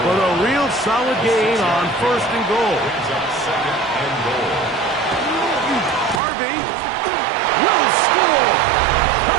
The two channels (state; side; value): drops out; left; at 6.2 s